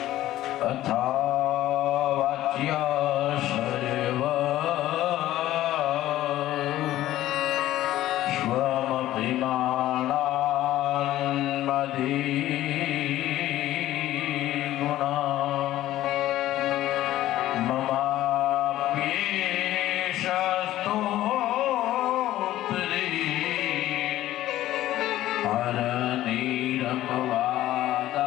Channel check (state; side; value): quieter; right; 14.3 dB